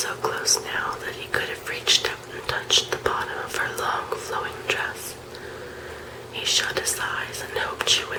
close now that he could have reached out and touched the bottom of her long flowing dress. He shut his eyes and hoped she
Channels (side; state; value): both; identical; correlation 1.00